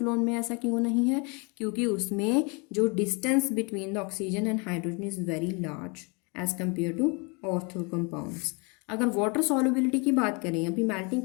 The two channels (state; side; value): quieter; right; 31.5 dB